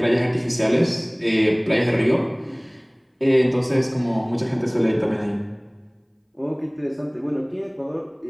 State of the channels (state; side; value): identical; both; correlation 1.00